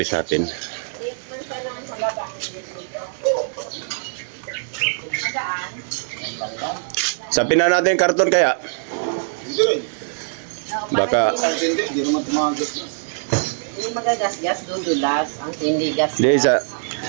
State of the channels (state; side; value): silent; left; digital silence